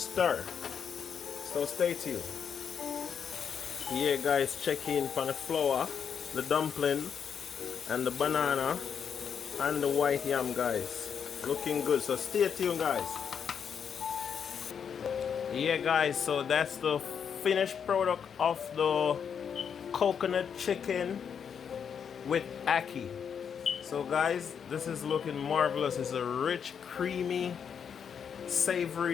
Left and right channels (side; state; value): right; quieter; 7.3 dB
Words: So stay tuned. Yeah, guys, check in for the flour, the dumpling, and the banana, and the white yam, guys. Looking good. So stay tuned, guys. Yeah, guys, so that's the finished product of the coconut chicken with ackee. So guys, this is looking marvelous. It's a rich, creamy,